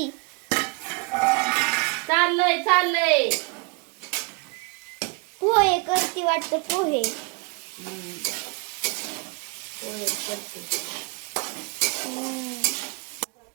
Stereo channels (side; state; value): left; quieter; 33.0 dB